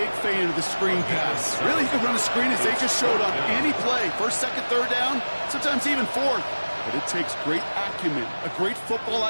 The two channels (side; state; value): both; inverted; correlation -1.00